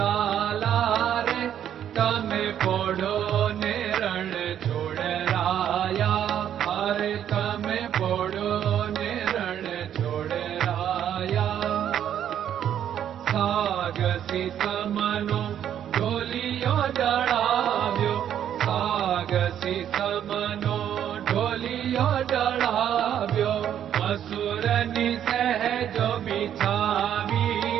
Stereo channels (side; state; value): left; quieter; 9.9 dB